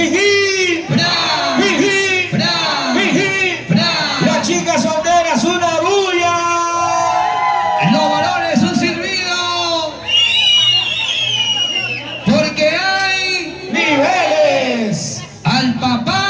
¡Bra! ¡Jijí! ¡Bra! ¡Jijí! ¡Bra! Las chicas solteras, una bulla. Los varones un silbido. Porque hay ¡Niveles! al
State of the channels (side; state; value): both; identical; correlation 1.00